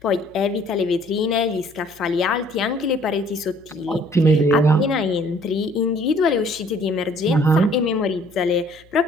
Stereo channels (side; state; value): left; noise; hum, 29 dB below the sound